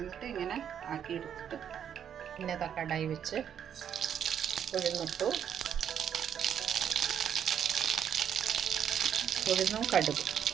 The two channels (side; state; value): left; quieter; 8.8 dB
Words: ഇങ്ങനെ ആക്കിയെടുത്തിട്ട് പിന്നെ കടായി വെച്ച് ഉഴുന്നിട്ടു. ഉഴുന്നും കടുകും,